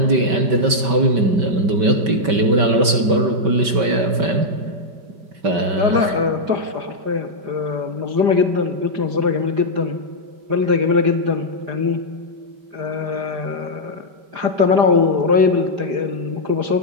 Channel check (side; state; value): left; late; 5.2 ms